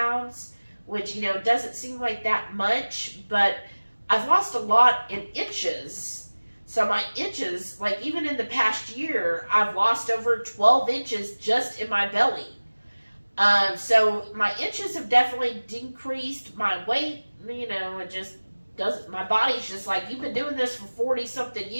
which, doesn't seem like that much, but I've lost a lot in inches. So my inches, like even in the past year, I've lost over 12 inches just in my belly. So my inches have definitely decreased. My weight, it just doesn't, my body's just like, you've been doing this for 40 something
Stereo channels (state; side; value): inverted; both; correlation -1.00